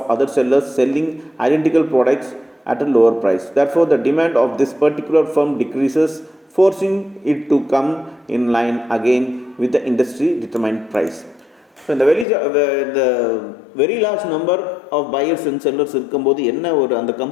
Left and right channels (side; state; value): right; drops out; at 12.2 s